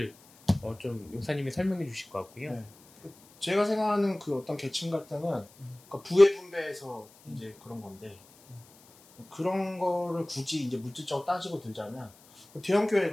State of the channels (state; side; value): noise; left; hiss, 26 dB below the sound